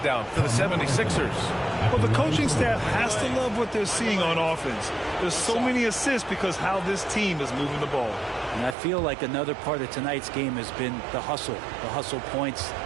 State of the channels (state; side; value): drops out; left; at 8.8 s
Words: for the 76ers. Well, the coaching staff has to love what they're seeing on offense. There's so many assists because how this team is moving the ball. And I feel like another part of tonight's game has been the hustle points,